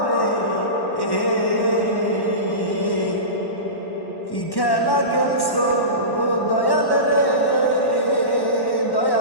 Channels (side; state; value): right; late; 1.1 ms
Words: রে। কি খেলা খেলছো দয়াল রে,